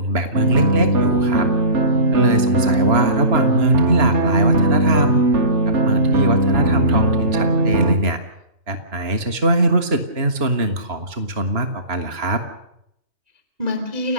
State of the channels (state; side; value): late; left; 2.9 ms